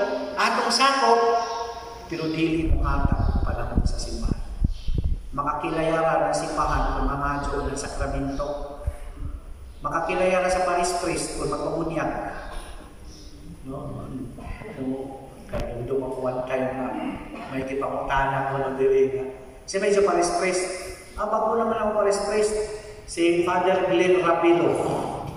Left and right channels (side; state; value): both; identical; correlation 1.00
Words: atong sakop, pero dili mo atang panahon sa simbahan. Makakilayaran ng simbahan kung mamadyo ng sakramento. Makakilayaran sa Paris Priest kung magpamunyag. No? Kaya doon ako one time na may kipangutanan ko ng diringa. Kasi medyo Paris Priest. Abag ko naman ako Paris Priest. Si Father Glenn Rapilo.